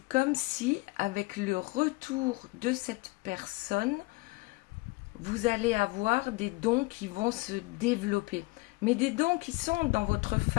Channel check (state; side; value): quieter; right; 24.3 dB